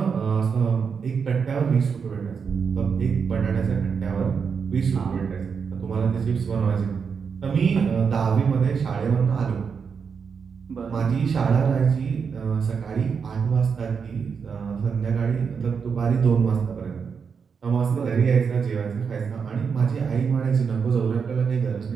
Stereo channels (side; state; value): left; quieter; 6.1 dB